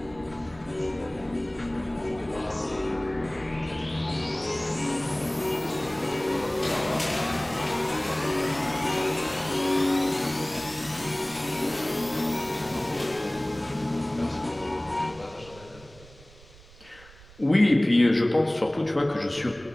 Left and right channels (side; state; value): right; noise; rumble, 22 dB below the sound